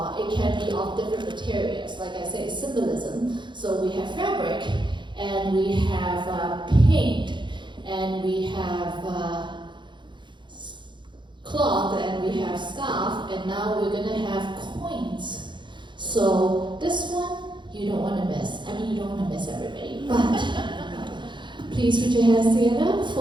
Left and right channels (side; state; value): left; late; 0.23 ms